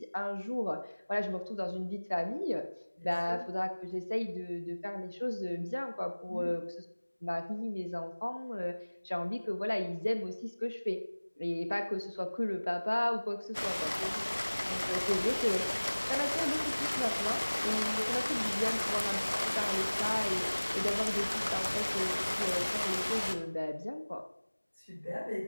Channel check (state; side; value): inverted; both; correlation -1.00